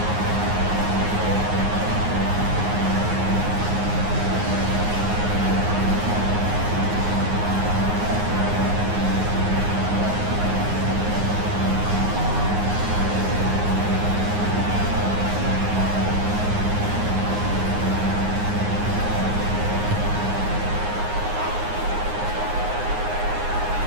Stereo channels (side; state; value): left; late; 9.6 ms